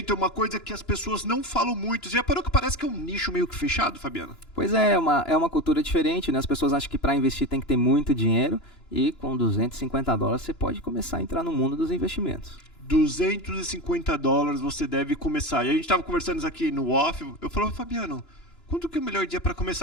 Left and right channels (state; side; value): late; right; 2.9 ms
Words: é uma coisa que as pessoas não falam muito. Já parou que parece que é um nicho meio que fechado, Fabiano? Pois é uma cultura diferente, né? As pessoas acham que para investir tem que ter muito dinheiro e com $250 você pode começar a entrar no mundo dos investimentos. $250 você deve começar. E a gente estava conversando isso aqui no off. Eu falei, Fabiano, quando que é o melhor dia para